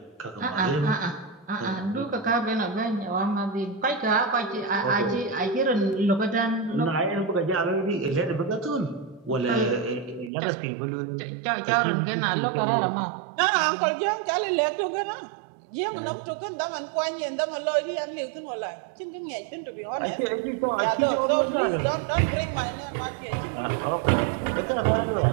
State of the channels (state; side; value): drops out; left; at 10.3 s